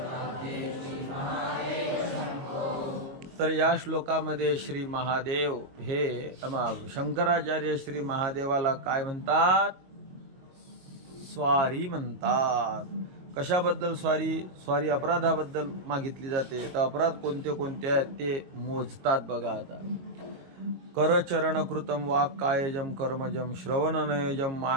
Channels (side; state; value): left; late; 22 ms